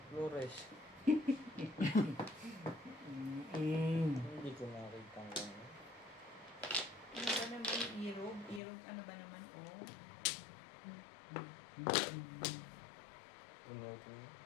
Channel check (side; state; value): right; drops out; at 8.6 s